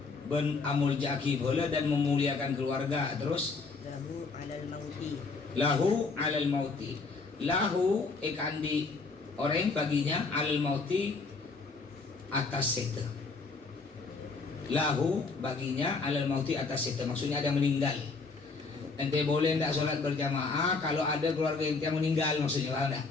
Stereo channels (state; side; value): quieter; right; 4.2 dB